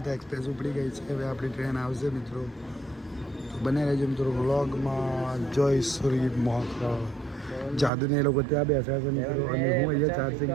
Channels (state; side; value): drops out; left; at 7.9 s